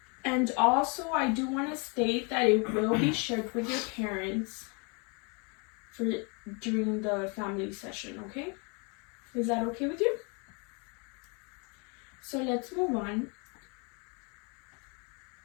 And also, I do want to state that it will be shared with your parents during the family session, okay? Is that okay with you? So let's move on.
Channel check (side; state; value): right; quieter; 33.2 dB